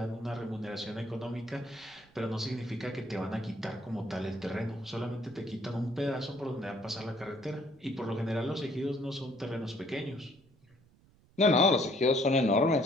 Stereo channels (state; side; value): noise; right; rumble, 29 dB below the sound